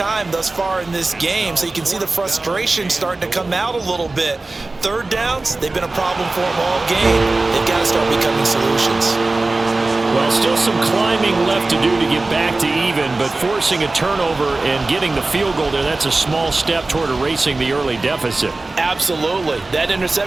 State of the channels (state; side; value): quieter; left; 3.2 dB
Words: thus far in this game, so you can see the frustration starting to come out a little bit. Third downs, they've been a problem for them all game. They've got to start becoming solutions. Well, still some climbing left to do to get back to even, but forcing a turnover and getting the field goal there, that's a small step toward erasing the early deficit. Absolutely. That